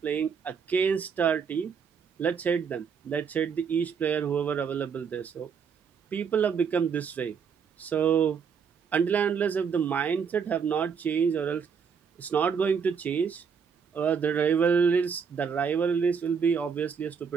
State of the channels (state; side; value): quieter; left; 6.4 dB